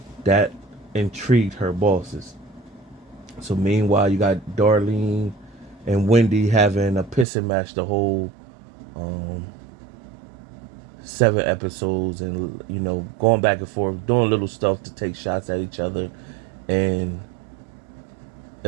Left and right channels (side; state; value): left; drops out; at 7.2 s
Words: that intrigued her bosses. So meanwhile, you got Darlene and Wendy having a pissing match the whole um, 7 episodes, and going back and forth, doing little stuff to take shots at each other. And